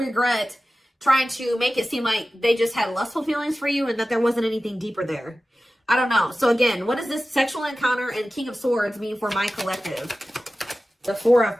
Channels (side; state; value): both; normal; correlation 0.95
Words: trying to make it seem like they just had lustful feelings for you and that there wasn't anything deeper there. I don't know. So again, what does this sexual encounter and King of Swords mean for my collective? The Four of